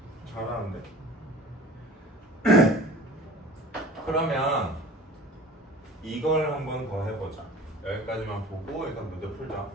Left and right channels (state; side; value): normal; both; correlation 0.43